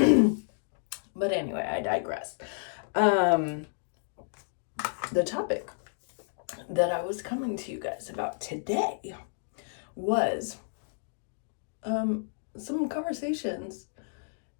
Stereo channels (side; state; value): right; silent; digital silence